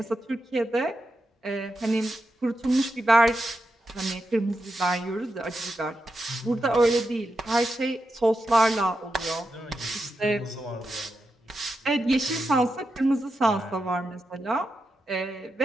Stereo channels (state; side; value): normal; both; correlation 0.87